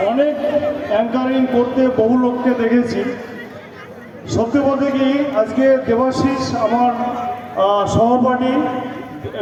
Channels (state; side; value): identical; both; correlation 1.00